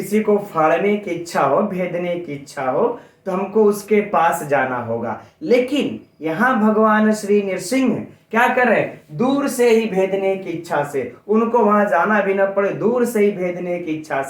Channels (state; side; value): identical; both; correlation 1.00